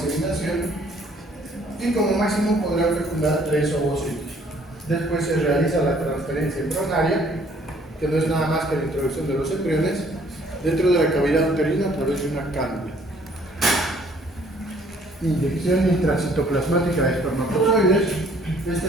y como máximo podrán fecundar 3 ovocitos. Después se realiza la transferencia embrionaria, que no es nada más que la introducción de los embriones dentro de la cavidad uterina a través de una cánula. Inyección intracitoplasmática de espermatozoides. Esta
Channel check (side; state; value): both; normal; correlation 0.60